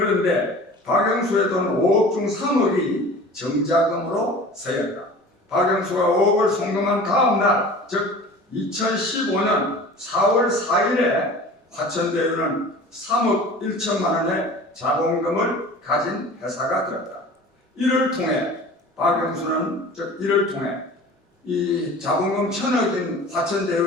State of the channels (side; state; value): both; normal; correlation 0.41